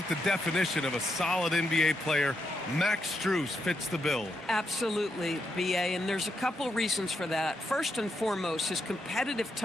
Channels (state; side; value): normal; both; correlation 0.82